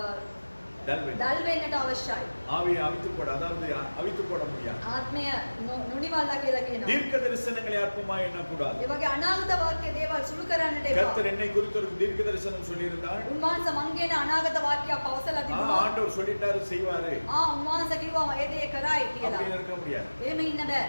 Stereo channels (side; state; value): both; inverted; correlation -1.00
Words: டல் வேண்டும். දල් වෙන්නට අවශ්‍යයි. ஆவியை அவித்து போட, அதாவது அவித்து போட முடியாது. ආත්මය නොනිවල්ලා කියලා කියනවා. தீர்க்க தரிசனங்களை அற்பமாய் எண்ணக்கூடாது. ඒ වගේ අනාගත වාක්‍ය දේවල් සුළු කරන්නට එපා. கர்த்தர் என்னை குறித்து ஒரு தீர்க்க தரிசனம் சொல்லியிருந்தார். උන්වහන්සේ මං කියන අනාගත වාක්‍යයක් පවසලා තිබුණා. ஆண்டவர் சொல்லிட்டாரு செய்வாரு උන්වහන්සේ කිව්වා ඒ දේ කරයි කියලා. அப்படின்னு இருக்க முடியாது. එහෙම ඉන්න බෑ.